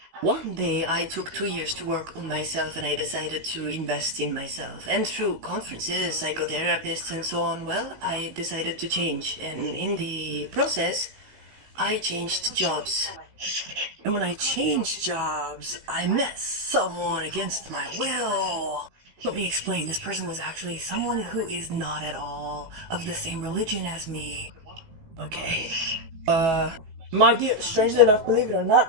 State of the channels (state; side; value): late; left; 16 ms